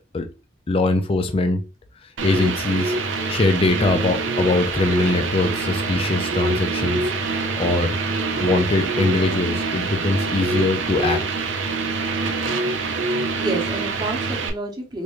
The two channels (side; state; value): both; normal; correlation 0.54